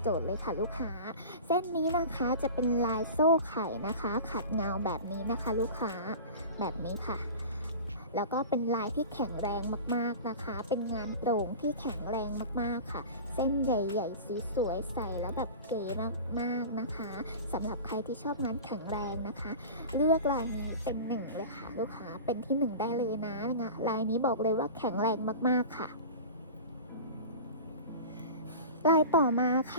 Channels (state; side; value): inverted; both; correlation -0.34